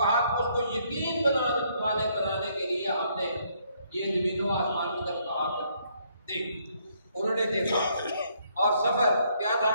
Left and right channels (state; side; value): inverted; both; correlation -0.70